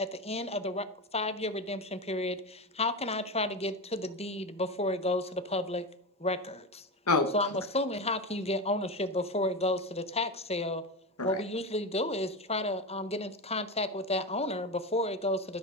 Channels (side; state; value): both; normal; correlation 0.19